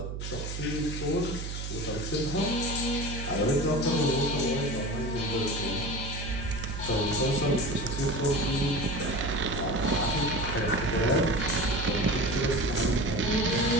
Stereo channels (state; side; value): noise; right; hum, 5 dB below the sound